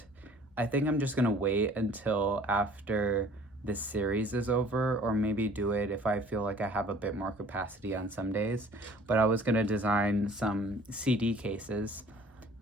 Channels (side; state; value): both; normal; correlation 0.52